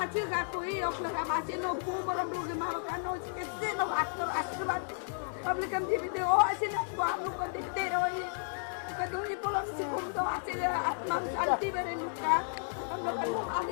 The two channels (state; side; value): silent; right; digital silence